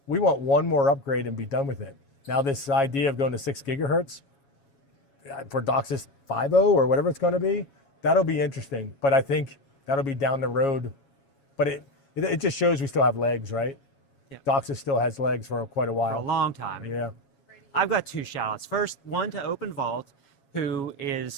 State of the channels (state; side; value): late; right; 7.2 ms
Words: we want one more upgrade and be done with it. Now this idea of going to 6 gigahertz for DOCSIS 5.0 or whatever it's going to be, that'll be interesting. But I think that'll be down the road. But it just shows we still have legs, right? Yeah. DOCSIS still has legs for quite a while. For a long time. Yeah. I've got 2 shout-outs. First, one to Open Vault, who